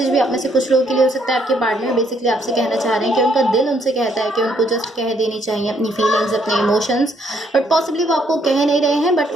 भी आप में से कुछ लोगों के लिए हो सकता है, आपके पार्टनर बेसिकली आपसे कहना चाह रहे हैं कि उनका दिल उनसे कहता है कि उनको जस्ट कह देनी चाहिए अपनी फीलिंग्स, अपने इमोशंस, बट पॉसिबली वो आपको कह नहीं रहे हैं, बट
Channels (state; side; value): normal; both; correlation 0.69